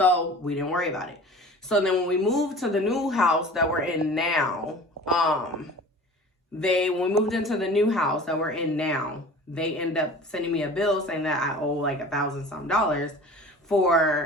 we didn't worry about it. So then when we moved to the new house that we're in now, when we moved into the new house that we're in now, they end up sending me a bill saying that I owe like $1,000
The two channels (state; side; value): normal; both; correlation 0.41